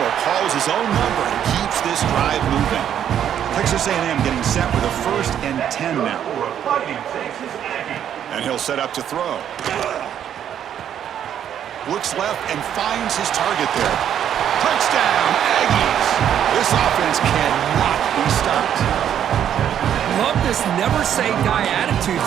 calls his own number and keeps this drive moving. Texas A&M getting set with a 1st and 10 now. And he'll set up to throw. Looks left and finds his target there. Touchdown, Aggies! This offense cannot be stopped. Love this never-say-die attitude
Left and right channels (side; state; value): left; quieter; 9.7 dB